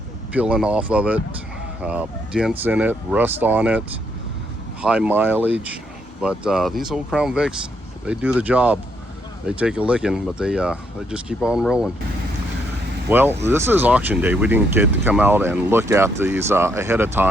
peeling off of it, dents in it, rust on it, high mileage. But these old Crown Vics, they do the job. They take a licking, but they just keep on rolling. Well, this is auction day. We didn't get to come out and look at these ahead of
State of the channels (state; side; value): normal; both; correlation 0.74